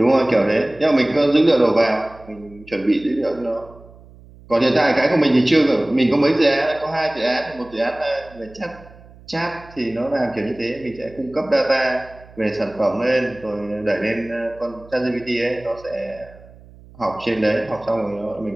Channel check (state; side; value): noise; right; hum, 22 dB below the sound